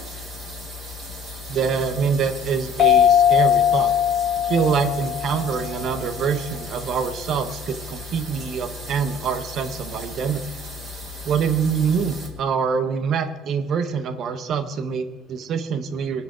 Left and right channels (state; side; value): normal; both; correlation 0.52